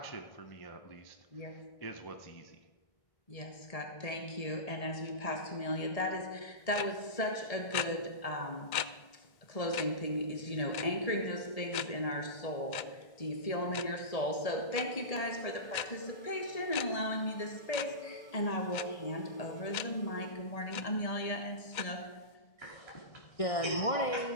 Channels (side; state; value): right; late; 1.6 ms